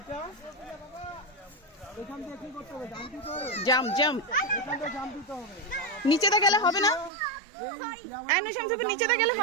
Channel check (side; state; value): left; drops out; at 7.1 s